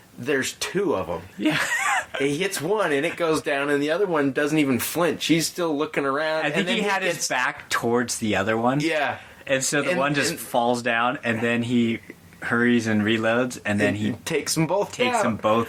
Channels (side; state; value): both; identical; correlation 1.00